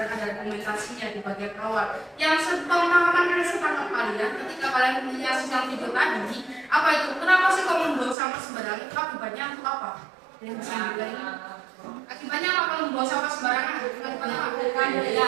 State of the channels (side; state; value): left; drops out; at 8.2 s